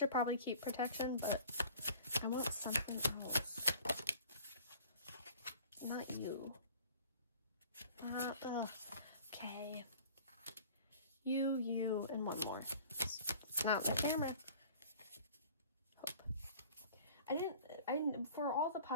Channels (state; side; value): inverted; both; correlation -0.47